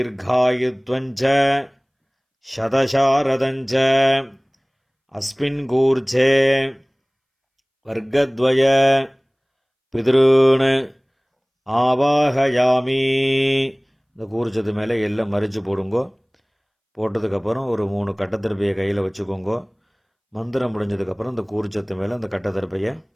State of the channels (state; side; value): identical; both; correlation 1.00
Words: சதசாரதஞ்ச அஸ்மின் கூர்ச்சே வர்க்கத்வய பித்ருன் ஆவாஹயாமி. இந்த கூர்ச்சத்து மேலே எல்லாம் மறித்து போடுங்கோ. போட்டதுக்கப்புறம் ஒரு 3 கட்டத்திருப்பையை கையில் வச்சுக்கோங்க. மந்திரம் முடிஞ்சதுக்கப்புறம் இந்த கூர்ச்சத்து மேலே அந்த கட்டத்திருப்பையை